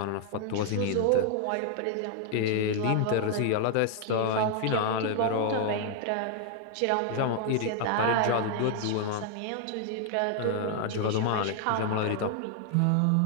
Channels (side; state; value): both; different; correlation 0.00